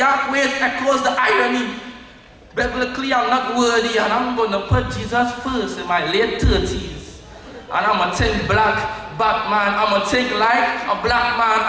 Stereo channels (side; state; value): both; identical; correlation 1.00